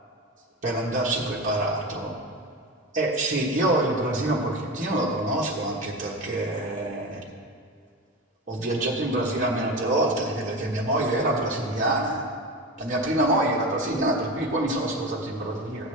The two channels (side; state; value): both; normal; correlation 0.25